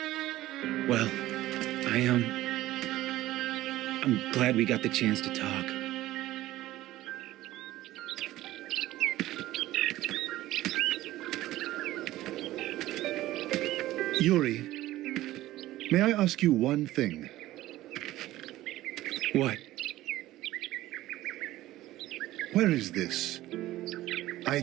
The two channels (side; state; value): left; quieter; 15.8 dB